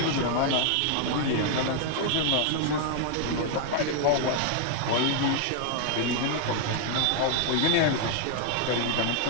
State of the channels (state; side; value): different; both; correlation 0.00